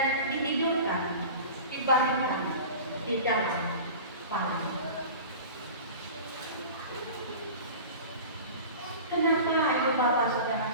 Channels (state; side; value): inverted; both; correlation -0.36